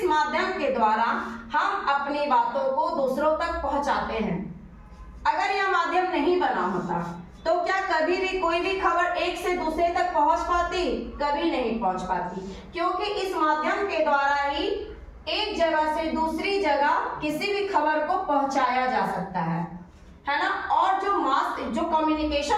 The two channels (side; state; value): both; identical; correlation 1.00